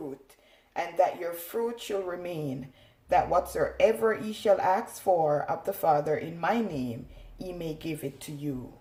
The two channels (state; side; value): identical; both; correlation 1.00